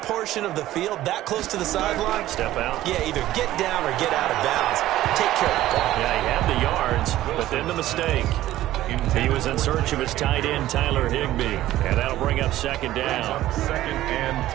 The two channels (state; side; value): quieter; left; 14.6 dB